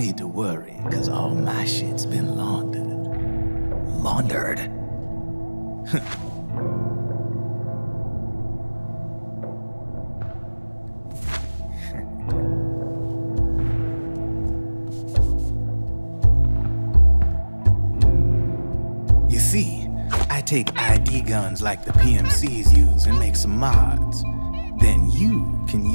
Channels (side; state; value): both; inverted; correlation -1.00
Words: to worry, because all my shit's been laundered. Laundered? You see, I take ID guns like the PMCs use and make some mods. Then you can